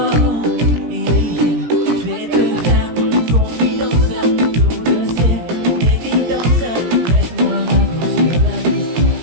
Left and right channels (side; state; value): left; late; 17 ms